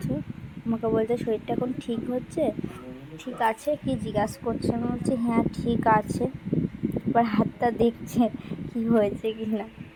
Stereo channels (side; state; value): both; identical; correlation 1.00